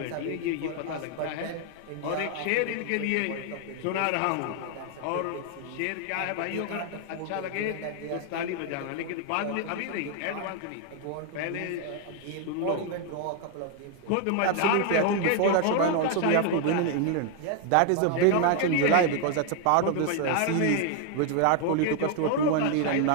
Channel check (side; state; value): both; different; correlation 0.00